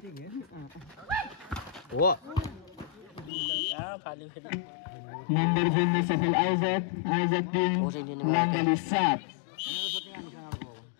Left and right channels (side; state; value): right; drops out; at 3.3 s